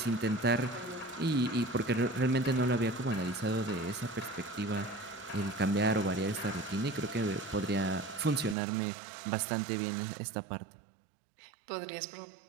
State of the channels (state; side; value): drops out; left; at 8.6 s